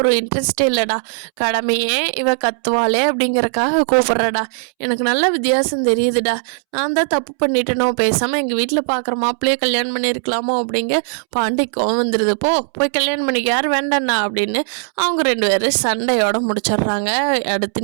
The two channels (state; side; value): silent; left; 67 dB below the other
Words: இன்ட்ரெஸ்டே இல்லைடா, கடமையே இவ கத்துவாளே அப்படிங்கிறக்காக கூப்பிட்றடா, எனக்கு நல்ல வித்தியாசம் தெரியுதுடா, நான் தான் தப்பு பண்ணிட்டேனோ, பேசாமல் எங்கள் வீட்டில் பார்க்குற மாப்பிள்ளையே கல்யாணம் பண்ணியிருக்கலாமோ அப்படிங்க பாண்டிக்கும் வந்துடுது. போய் கல்யாணம் பண்ணிக்க, யார் வேண்டாண்ணா அப்படின்னு அவங்க 2 பேரும் சண்டையோட முடிச்சிடுறாங்க.